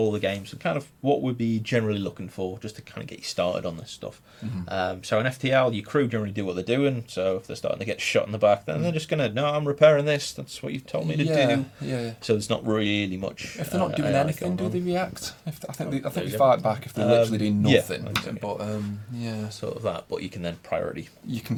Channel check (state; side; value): identical; both; correlation 1.00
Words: the games and kind of what we'd be generally looking for, just to kind of get you started on this stuff. So in FTL, your crew generally do what they're doing. So if they're starting to get shot in the back, then they're just going to, no, I'm repairing this. That's what you've told me to do. So there's not really much. If they're not doing anything, do they react? I think they fight back if they're literally doing nothing. But sort of that. But you can then priority. You